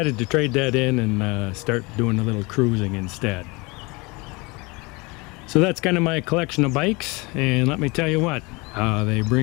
to trade that in and start doing a little cruising instead. So that's kind of my collection of bikes, and let me tell you what, they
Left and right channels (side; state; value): right; quieter; 26.2 dB